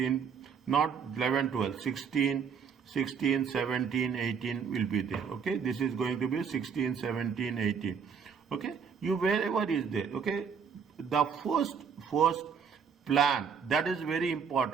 Not 11, 12, 16. 16, 17, 18 will be there. Okay, this is going to be 16, 17, 18. Okay, you wherever is there. Okay, the first plan, that is very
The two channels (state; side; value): quieter; left; 6.5 dB